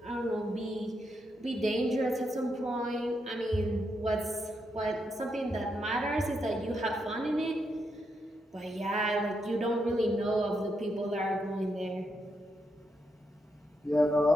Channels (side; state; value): both; normal; correlation 0.81